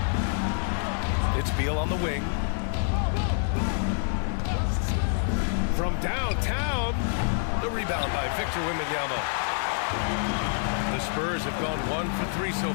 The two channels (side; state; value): right; silent; 57 dB below the other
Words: It's Beal on the wing. From downtown, the rebound by Victor Wembanyama. The Spurs have gone 1 for 3 so